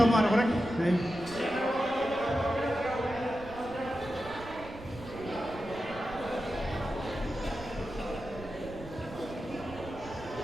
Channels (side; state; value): right; noise; rumble, 15 dB below the sound